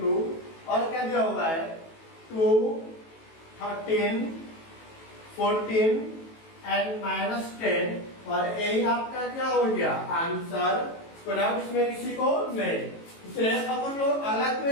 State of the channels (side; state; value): right; late; 18 ms